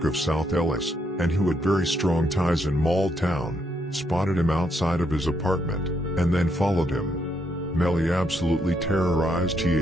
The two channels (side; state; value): both; normal; correlation 0.76